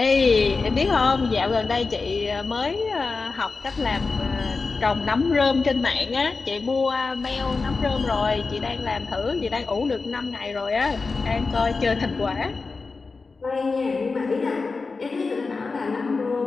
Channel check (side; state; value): right; quieter; 4.2 dB